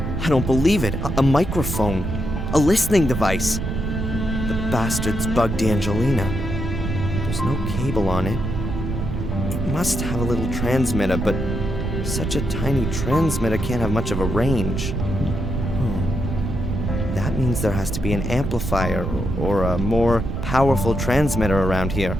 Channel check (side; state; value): right; noise; rumble, 3 dB below the sound